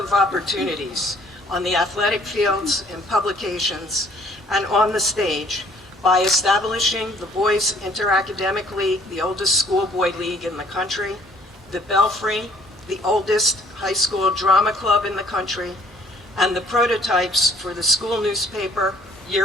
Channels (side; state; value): both; normal; correlation 0.58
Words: opportunities on the athletic fields, in publications, and on the stage by establishing the Boys Inter-Academic League, the oldest schoolboy league in the country, the Belfry, the oldest high school drama club in the country, and the prototypes for the school newspaper,